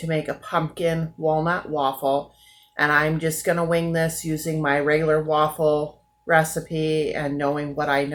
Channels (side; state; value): both; identical; correlation 1.00